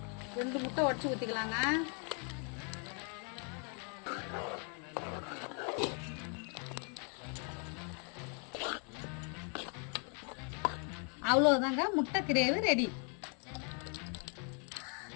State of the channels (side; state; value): right; quieter; 39.0 dB